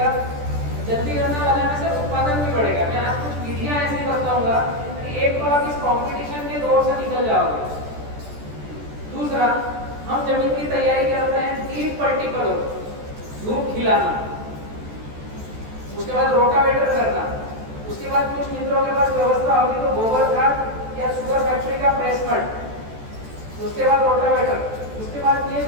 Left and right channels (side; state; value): left; late; 14 ms